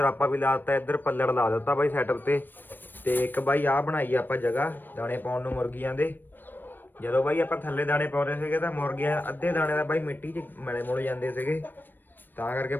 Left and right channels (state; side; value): late; right; 0.093 ms